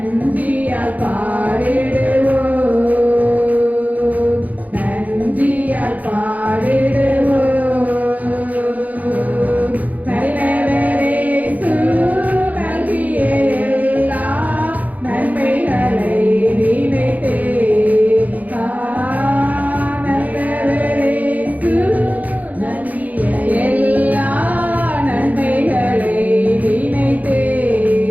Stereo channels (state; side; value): late; left; 0.077 ms